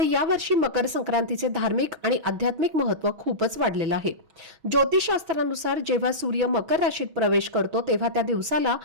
यावर्षी मकर संक्रांतीचे धार्मिक आणि आध्यात्मिक महत्त्व खूपच वाढलेलं आहे. ज्योतिषशास्त्रानुसार जेव्हा सूर्य मकर राशीत प्रवेश करतो तेव्हा त्या दिवसाला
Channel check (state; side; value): late; left; 6.2 ms